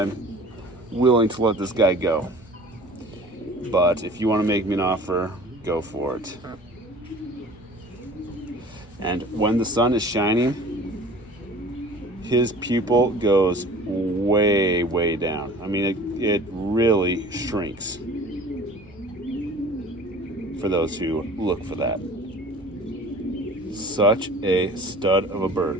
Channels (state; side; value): normal; both; correlation 0.45